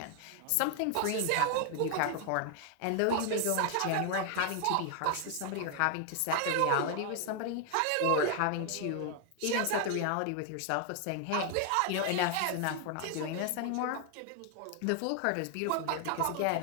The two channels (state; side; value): different; both; correlation 0.00